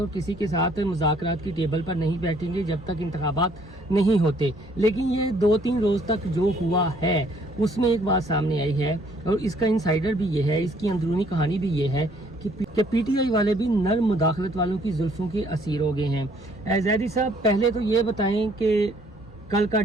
किसी के साथ मुज़ाकरात की टेबल पर नहीं बैठेंगे जब तक इंतखाबात नहीं होते, लेकिन ये 2-3 रोज़ तक जो हुआ है उसमें एक बात सामने आई है और इसका इंसाइडर भी ये है, इसकी अंदरूनी कहानी भी ये है कि पीटीआई वाले भी नर मुदाखलत वालों की जुल्फों के असीर हो गए हैं। ज़ैदी साहब, पहले तो ये बताएं कि कल का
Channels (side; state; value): both; normal; correlation 0.63